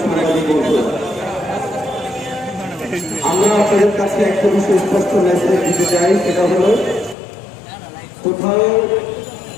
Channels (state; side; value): drops out; right; at 7.2 s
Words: সাংবাদিক বন্ধু, আমরা আপনাদের কাছে একটা বিষয় স্পষ্ট মেসেজ দিতে চাই। সেটা হলো, কোথাও